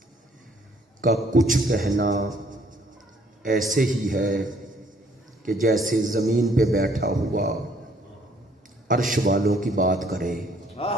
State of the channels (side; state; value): both; normal; correlation 0.63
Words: کا کچھ کہنا ایسے ہی ہے کہ جیسے زمین پہ بیٹھا ہوا عرش والوں کی بات کرے۔